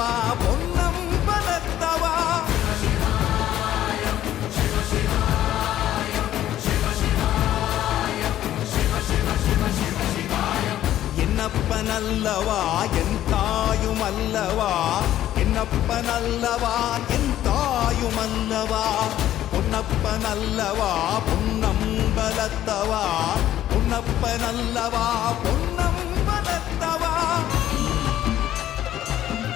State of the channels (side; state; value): right; quieter; 12.6 dB